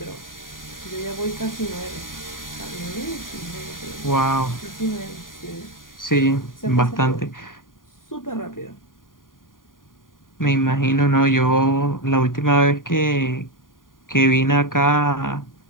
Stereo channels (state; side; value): late; right; 0.90 ms